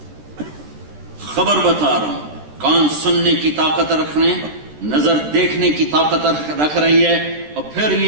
خبر بتا رہا ہوں. کان سننے کی طاقت رکھ رہے ہیں، نظر دیکھنے کی طاقت رکھ رہی ہے. اور پھر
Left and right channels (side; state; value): left; late; 13 ms